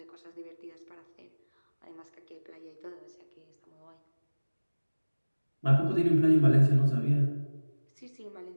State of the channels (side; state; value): both; inverted; correlation -1.00